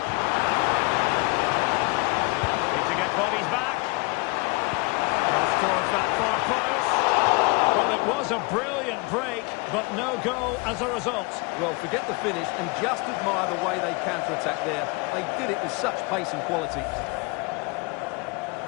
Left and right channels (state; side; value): quieter; right; 27.7 dB